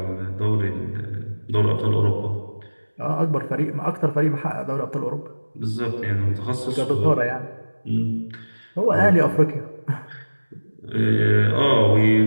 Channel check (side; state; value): both; inverted; correlation -1.00